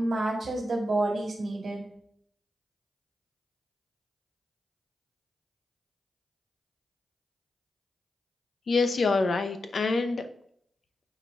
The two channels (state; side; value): normal; both; correlation 0.88